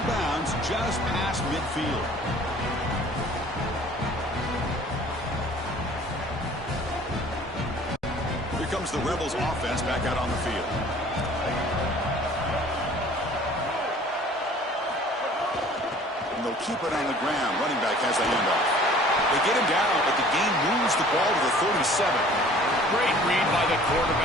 bounds just past midfield. Here comes the Rebels offense back out on the field. And they'll keep it on the ground. Running back has the handoff. They get him down, but the game moves the ball to the 37. Great read by the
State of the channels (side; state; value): both; normal; correlation 0.50